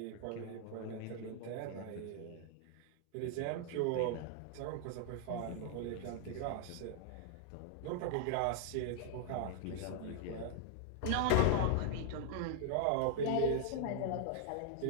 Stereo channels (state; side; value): different; both; correlation -0.01